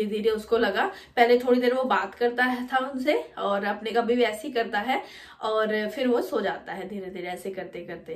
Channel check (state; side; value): identical; both; correlation 1.00